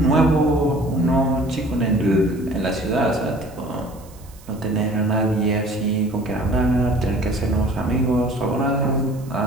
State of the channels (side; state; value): right; noise; hiss, 25 dB below the sound